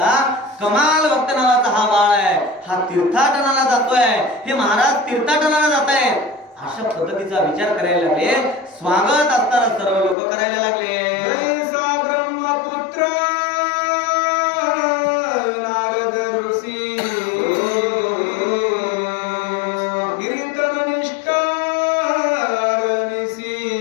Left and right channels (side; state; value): right; drops out; at 10.2 s